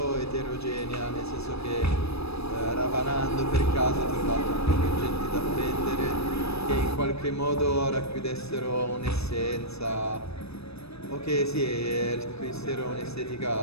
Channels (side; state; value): right; late; 0.78 ms